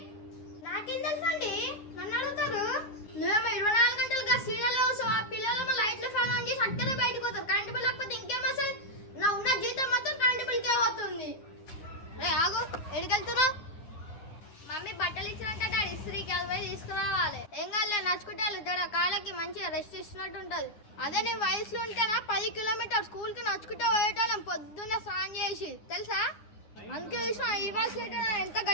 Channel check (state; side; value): late; right; 9.6 ms